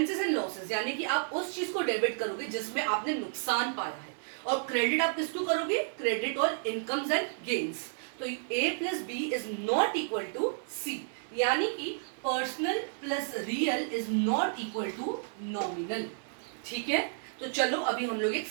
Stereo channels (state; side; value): silent; left; 57 dB below the other